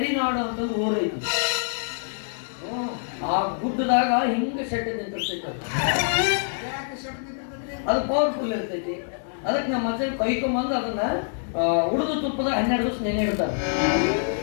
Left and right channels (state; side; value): silent; right; digital silence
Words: ಅಂತ ಒಂದು ಊರು ಐತಿ ಆ ಗುಡ್ಡದಾಗ ಹಿಂಗ ಶೆಡ್ ನಿಂತಿರ್ತೈತಿ ಅದು ಪವರ್ಫುಲ್ ಇರ್ತೈತಿ ಅದಕ್ಕೆ ನಮ್ಮ ಮಚ್ಚ ಕೈಕೊಂಬಂದು ಅದನ್ನ ಉಳಿದು ತುಪ್ಪದಾಗ 12 ದಿವಸ ನೆನೆ ಇಡ್ತಾರ